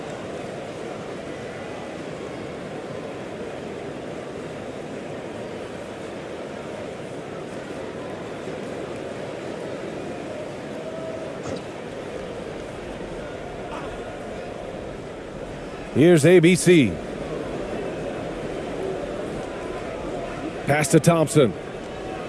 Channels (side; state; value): both; identical; correlation 1.00